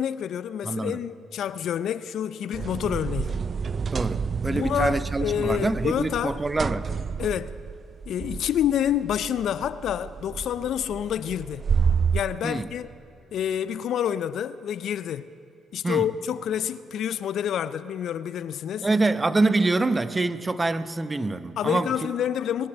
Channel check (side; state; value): both; normal; correlation 0.74